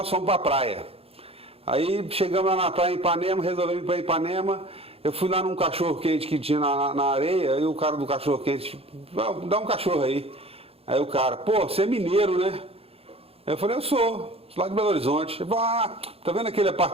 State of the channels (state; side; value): late; left; 0.28 ms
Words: fomos para a praia. Aí chegamos lá na praia em Ipanema, resolvemos ir para Ipanema. Eu fui lá num cachorro-quente que tinha na areia, e o cara do cachorro-quente, dá um cachorro aí. Aí o cara, pô, você é mineiro, né? Eu falei, eu sou lá de Belo Horizonte. Ele falou, tá vendo aquele